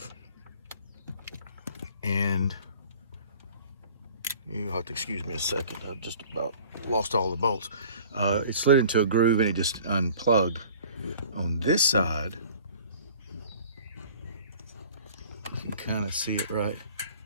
and you'll have to excuse me a second, I've just about lost all the bolts. It slid into a groove and it just unplugged. On this side, you can kind of see it right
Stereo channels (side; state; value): both; inverted; correlation -0.48